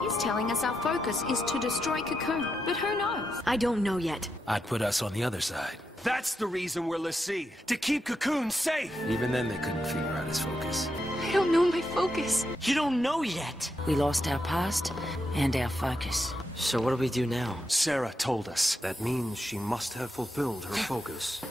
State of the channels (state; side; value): normal; both; correlation 0.84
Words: telling us our focus is to destroy Cocoon, but who knows? I don't know yet. I'd put us on the other side. That's the reason we're l'Cie, to keep Cocoon safe! Even then they couldn't figure out his focus. I don't know my focus. You don't know yet! We lost our past and our focus. So what do we do now? Sarah told us. That means she must have fulfilled her focus.